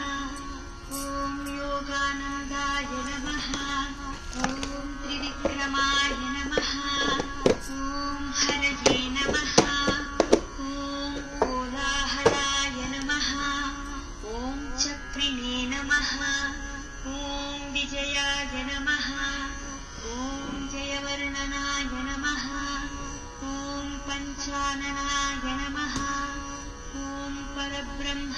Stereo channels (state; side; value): identical; both; correlation 1.00